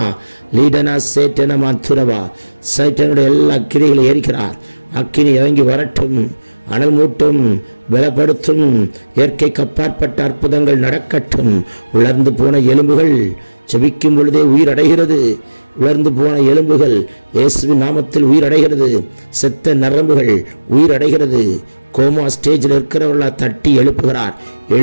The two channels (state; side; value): inverted; both; correlation -1.00